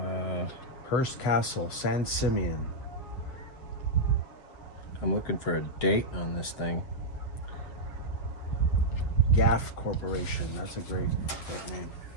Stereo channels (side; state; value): right; late; 7.8 ms